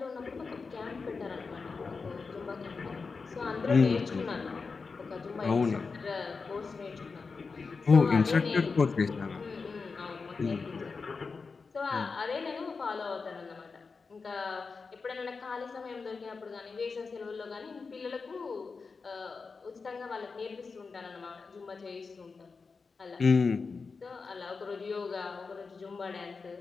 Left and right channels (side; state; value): right; quieter; 4.7 dB